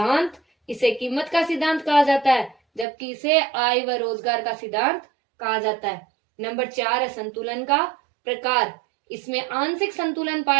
इसे कीमत का सिद्धांत कहा जाता है, जबकि इसे आय व रोजगार का सिद्धांत कहा जाता है। नंबर 4 है संतुलन का प्रकार, इसमें आंशिक संतुलन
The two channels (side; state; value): left; drops out; at 2.9 s